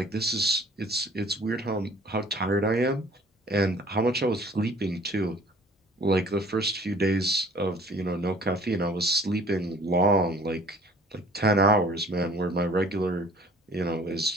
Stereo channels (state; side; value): normal; both; correlation 0.52